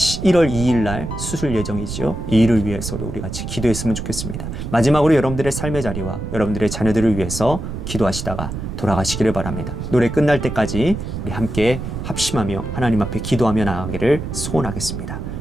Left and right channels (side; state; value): right; noise; rumble, 6 dB below the sound